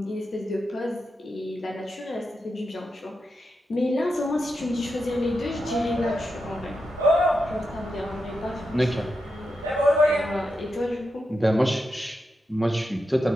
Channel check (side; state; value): both; normal; correlation 0.87